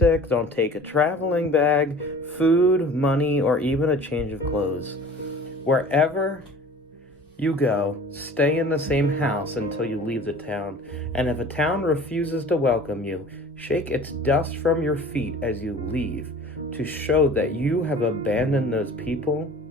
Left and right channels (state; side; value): normal; both; correlation 0.44